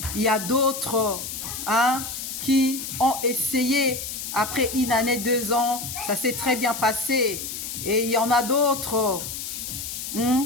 Il y a d'autres qui ont essayé après 1 année, 2 ans, ça s'est très bien passé. Et il y en a d'autres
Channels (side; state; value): left; noise; hiss, 6 dB below the sound